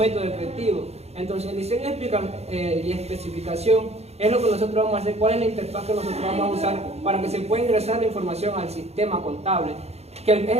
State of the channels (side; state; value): left; late; 0.31 ms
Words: efectivo. Entonces, el diseño y especificación es lo que nosotros vamos a hacer, cuál es la interfaz que nosotros vamos a usar para que se pueda ingresar la información al sistema contable, que es